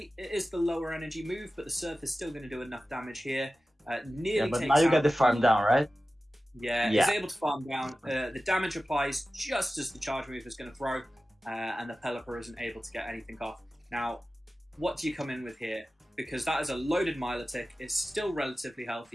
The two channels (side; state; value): both; normal; correlation 0.95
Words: It is the lower energy move, but the Surf is still going to do enough damage here. Nearly But takes now you out get the farm down, right? Yeah, he's able to farm down. The damage applies just as the charge move is going to throw, and the Pelipper isn't able to get anything off. Now, what do you come in with here? Because that is a loaded Milotic. It's still relatively